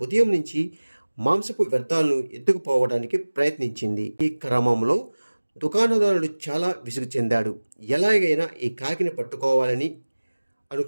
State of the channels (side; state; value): both; inverted; correlation -1.00